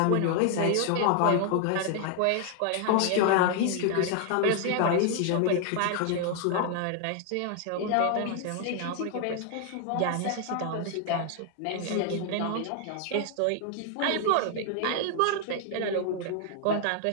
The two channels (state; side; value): different; both; correlation 0.00